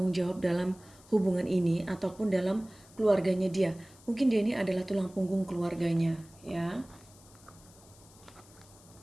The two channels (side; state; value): left; noise; hiss, 25 dB below the sound